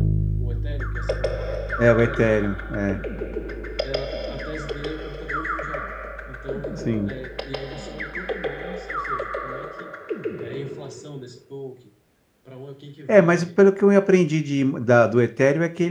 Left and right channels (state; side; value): identical; both; correlation 1.00